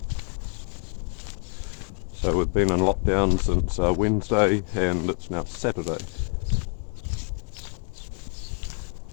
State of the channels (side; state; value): right; quieter; 38.4 dB